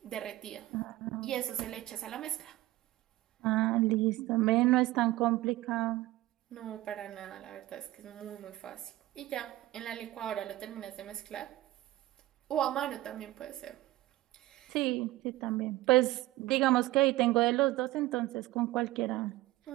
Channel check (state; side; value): quieter; left; 17.1 dB